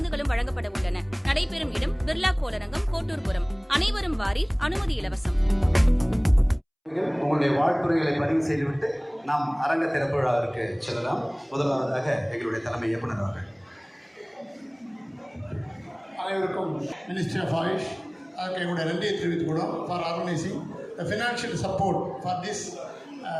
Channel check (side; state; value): both; identical; correlation 1.00